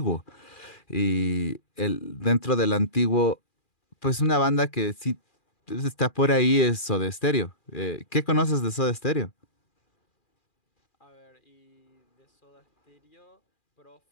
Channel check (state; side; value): late; right; 2.4 ms